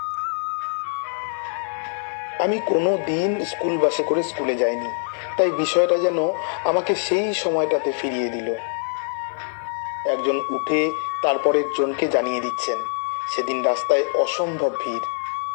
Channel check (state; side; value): silent; right; 63 dB below the other